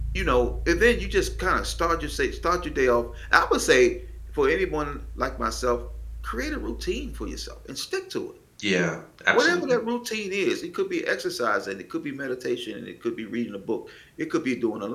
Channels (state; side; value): identical; both; correlation 1.00